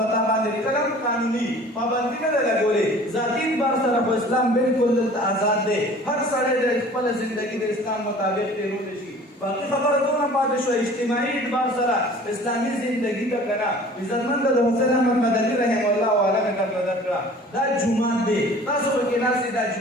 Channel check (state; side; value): normal; both; correlation 0.47